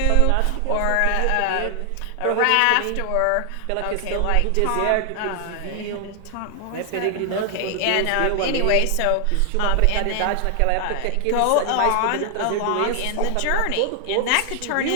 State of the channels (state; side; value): different; both; correlation 0.00